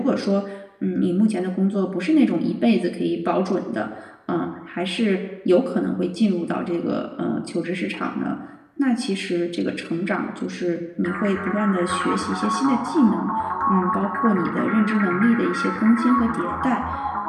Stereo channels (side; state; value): both; identical; correlation 1.00